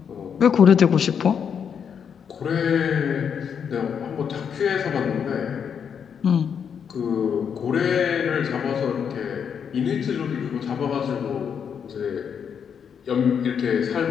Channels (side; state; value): right; quieter; 7.4 dB